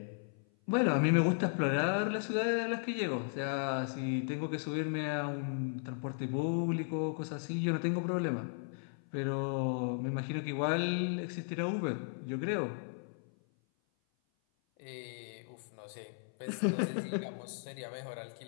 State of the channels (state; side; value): silent; right; 54 dB below the other